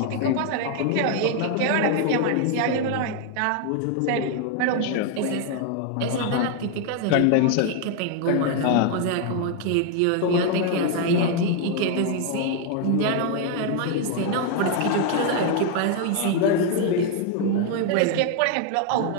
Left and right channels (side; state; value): both; different; correlation 0.00